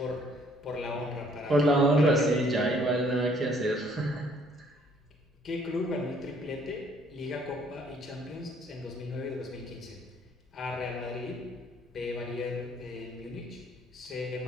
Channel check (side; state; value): both; normal; correlation 0.62